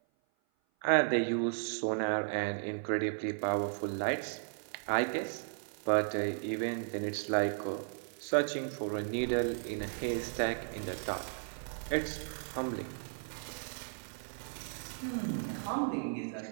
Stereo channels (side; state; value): left; silent; 54 dB below the other